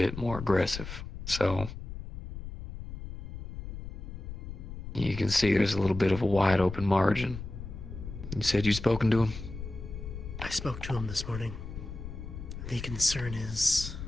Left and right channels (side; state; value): left; noise; rumble, 9 dB below the sound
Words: more aggressive. So you can see there's a little bit of a wide open margin. You said you'd spoken to him? I spoke to him this morning. The concern is